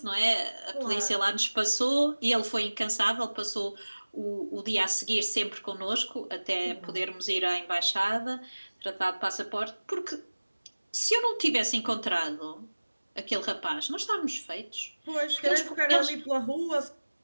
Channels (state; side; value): inverted; both; correlation -1.00